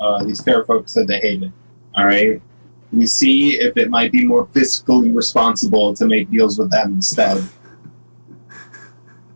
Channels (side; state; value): both; inverted; correlation -1.00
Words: these fair folks said they hated. All right. We see if it might be more fiscally responsible to make deals with them instead.